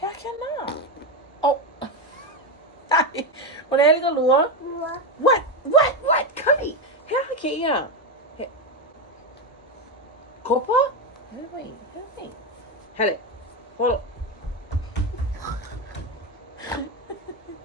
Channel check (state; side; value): normal; both; correlation 0.11